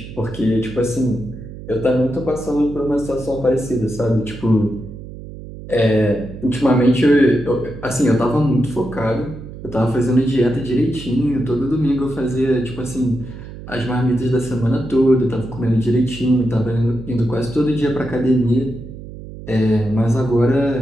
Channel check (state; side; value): noise; right; hum, 13 dB below the sound